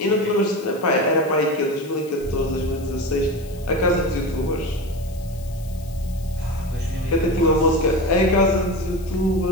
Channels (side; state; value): left; noise; hiss, 22 dB below the sound